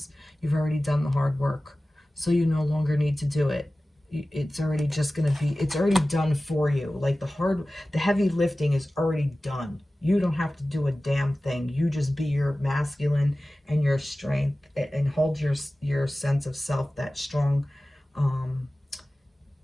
You've already done the hard work. So you no longer need to do it. It's already just going to be, it's already done for you. Like the heavy lifting is already done. You don't have to do a damn thing. You just be your masculine and your strength, and hold your sense of self, that strong,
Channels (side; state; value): both; normal; correlation 0.96